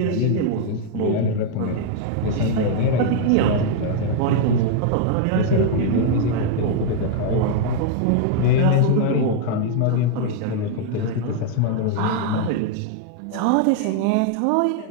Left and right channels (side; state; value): both; different; correlation 0.00